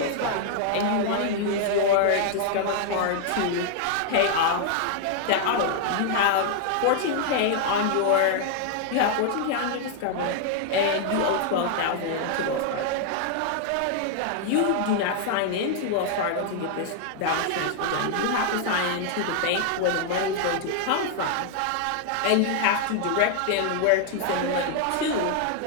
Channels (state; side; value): different; both; correlation 0.00